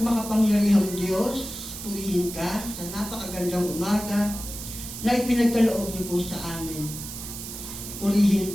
makapangyarihang Diyos, purihin ka sa napakagandang umaga na ipinagkaloob niyo po sa amin. Purihin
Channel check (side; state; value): right; noise; hiss, 9 dB below the sound